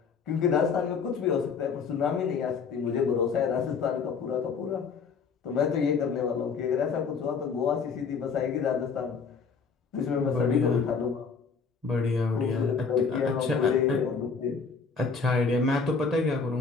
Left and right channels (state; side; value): quieter; right; 5.4 dB